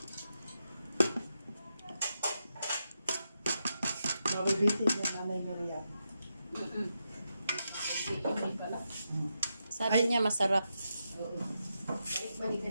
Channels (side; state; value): both; inverted; correlation -0.85